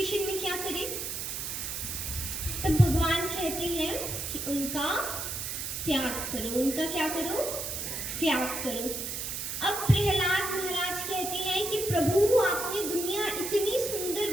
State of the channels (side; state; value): right; noise; hiss, 4 dB below the sound